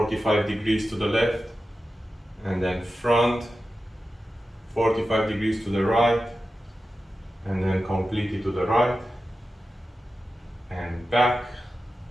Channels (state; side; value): normal; both; correlation 0.92